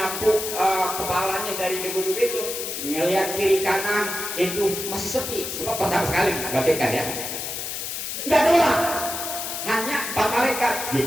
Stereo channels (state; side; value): noise; left; hiss, 5 dB below the sound